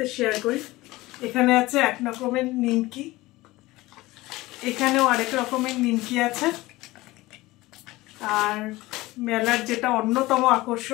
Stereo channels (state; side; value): quieter; right; 19.3 dB